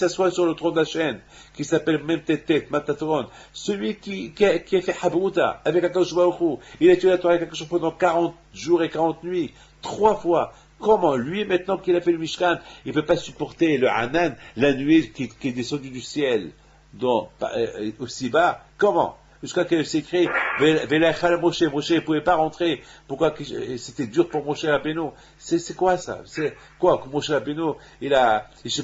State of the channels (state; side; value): identical; both; correlation 1.00